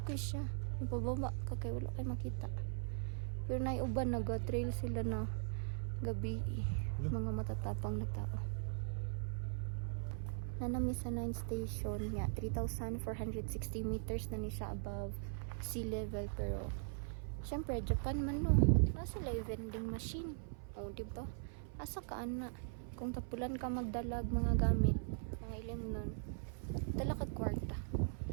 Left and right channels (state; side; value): silent; left; 51 dB below the other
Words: kay siya. Ipababa ka kay wala kay makita. Pero nay uban naga-trail sila na gabi. Mga matatapang na tao. Nanami sa 9th station niya, 3,460 meters na ni siya above sea level. Pero syempre Japan man no, nasa live vending machine. O diba, asa ka ana kung tapulan ka magdalag mga gamit, mga ilim nun, dala ka kwarta,